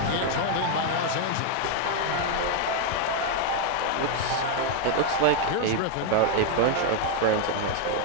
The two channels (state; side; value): different; both; correlation 0.01